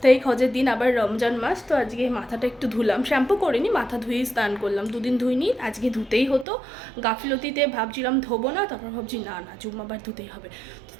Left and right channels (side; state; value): left; drops out; at 6.5 s